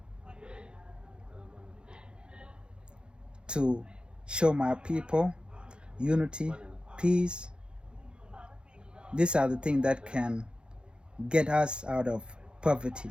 to show my people unity, peace. These are the things that can get us out of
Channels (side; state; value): left; late; 0.052 ms